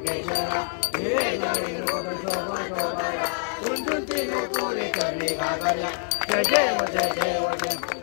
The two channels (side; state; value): right; silent; digital silence